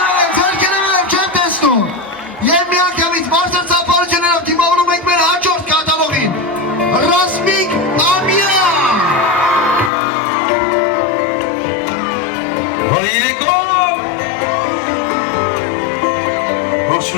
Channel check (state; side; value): drops out; right; at 9.9 s